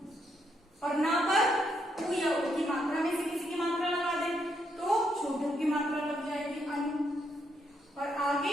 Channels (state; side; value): normal; both; correlation 0.76